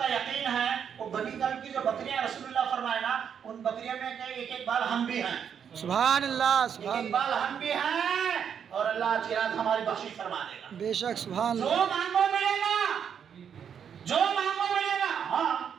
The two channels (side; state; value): left; quieter; 7.9 dB